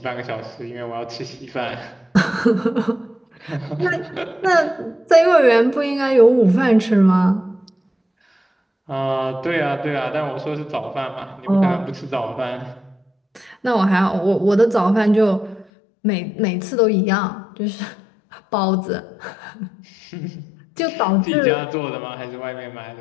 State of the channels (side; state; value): right; drops out; at 15.7 s